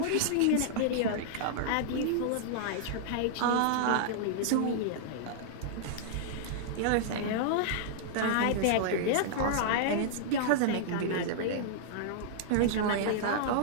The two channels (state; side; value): different; both; correlation -0.01